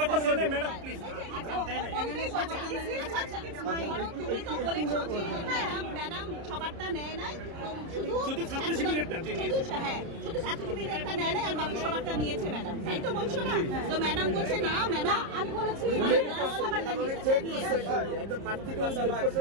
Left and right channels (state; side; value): late; left; 30 ms